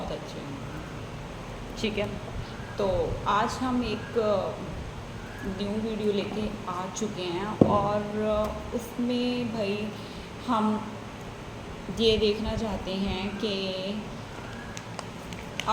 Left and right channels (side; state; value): both; identical; correlation 1.00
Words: अच्छे होंगे। ठीक है, तो आज हम एक न्यू वीडियो लेके आ चुके हैं और उसमें भाई हम ये देखना चाहते हैं कि